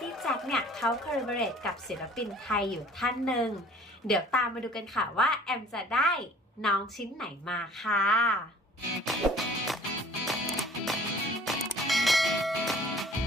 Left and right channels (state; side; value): normal; both; correlation 0.51